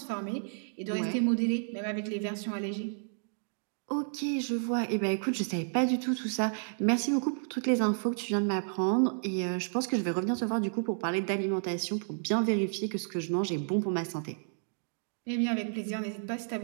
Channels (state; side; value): silent; left; digital silence